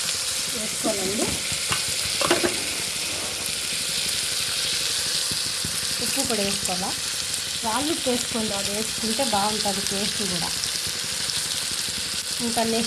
వేసుకోవాలండి. ఉప్పు కూడా వేసుకోవాలా. రాళ్ళు వేసుకోండి, అది వేసుకుంటే బాగుంటుంది టేస్ట్ కూడా. ఇంకా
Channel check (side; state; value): both; identical; correlation 1.00